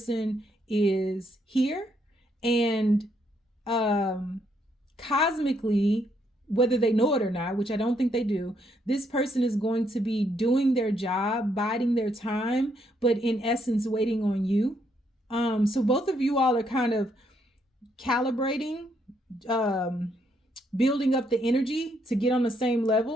is here. And cosmically, whether they know it or not, which I don't think they do, this person is going to be doing their job, biding their time, but in essence, waiting on you. So both of you all are kind of calibrating, building up the energy to get on the same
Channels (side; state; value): both; normal; correlation 0.74